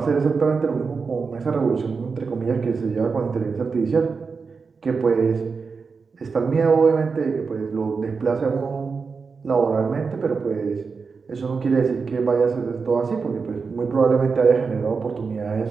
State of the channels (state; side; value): quieter; left; 5.0 dB